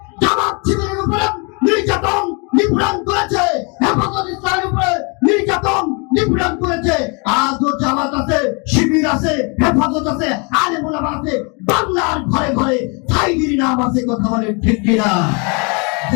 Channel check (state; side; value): quieter; right; 32.8 dB